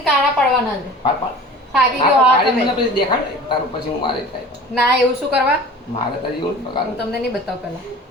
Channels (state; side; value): normal; both; correlation 0.41